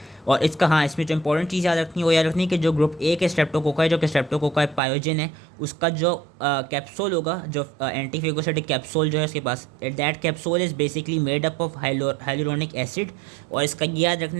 और इसका हाँ, इसमें जो इंपॉर्टेंट चीज़ याद रखनी है वो याद रखनी है कि जो ग्रुप ए के स्ट्रेप्टोकोकाई, जो कि स्ट्रेप्टोकोकाई पायोजन है, उसका जो कैप्सूल होगा, जो एंटीफेगोसाइटिक कैप्सूल जो है उसके पास, that capsule is basically made up of hyaluronic acid. और इसका याद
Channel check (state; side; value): drops out; left; at 4.8 s